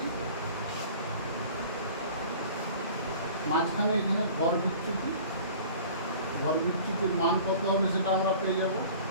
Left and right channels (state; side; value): inverted; both; correlation -0.45